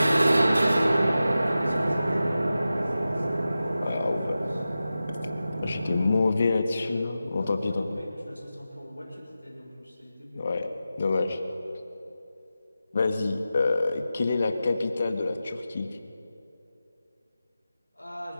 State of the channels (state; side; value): inverted; both; correlation -0.93